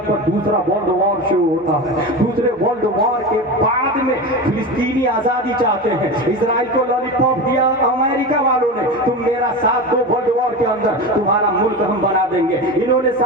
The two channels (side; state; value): both; normal; correlation 0.25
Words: پر دوسرا ورلڈ وار شروع ہوتا ہے. دوسرے ورلڈ وار کے بعد میں فلسطینی آزادی چاہتے ہیں. اسرائیل کو لالی پاپ دیا امریکہ والوں نے، تم میرا ساتھ دو ورلڈ وار کے اندر تمہارا ملک ہم بنا دیں گے. انہوں نے